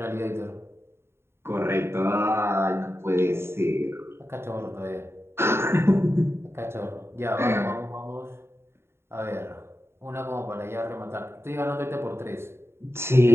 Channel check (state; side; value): late; left; 0.12 ms